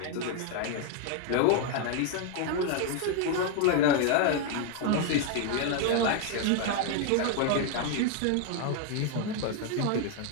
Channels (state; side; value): different; both; correlation 0.00